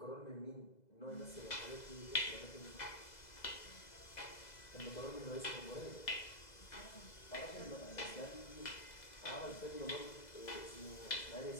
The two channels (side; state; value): right; late; 2.0 ms